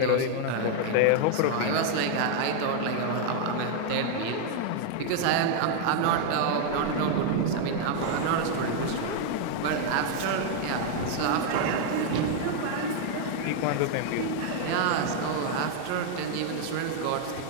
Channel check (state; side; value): different; both; correlation 0.00